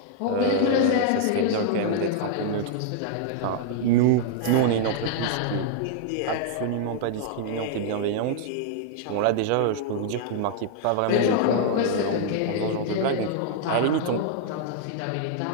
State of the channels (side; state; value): both; different; correlation -0.01